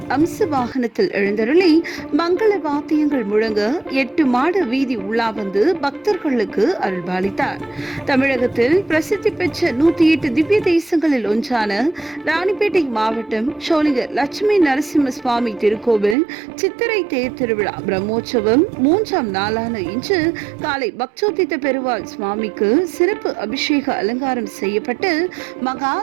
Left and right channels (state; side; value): drops out; left; at 16.2 s